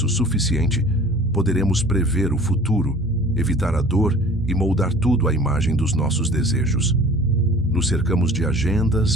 suficiente, poderemos prever o futuro, evitar a dor e moldar tudo à imagem dos nossos desejos. Nos cercamos de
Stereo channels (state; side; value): noise; left; hum, 23 dB below the sound